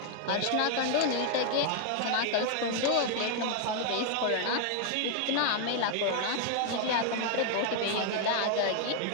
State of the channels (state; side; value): different; both; correlation 0.00